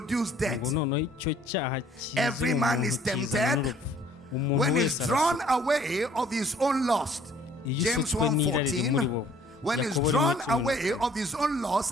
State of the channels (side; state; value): both; normal; correlation 0.58